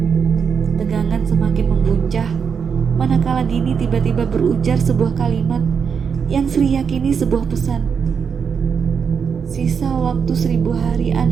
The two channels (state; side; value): quieter; left; 6.5 dB